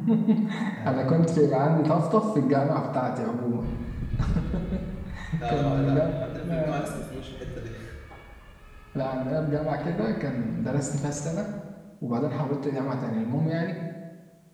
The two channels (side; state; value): both; identical; correlation 1.00